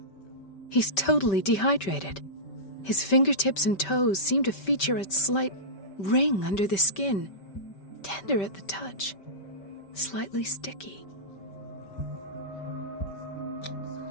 He's totally dehydrated. His fingertips and toes seem to feature a slight ring under the skin, tender at the touch, slightly sticky.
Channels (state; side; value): late; right; 5.2 ms